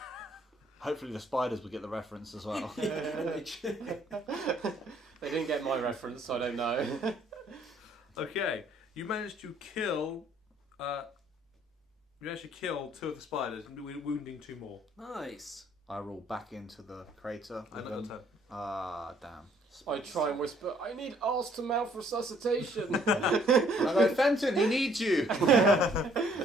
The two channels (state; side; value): normal; both; correlation 0.62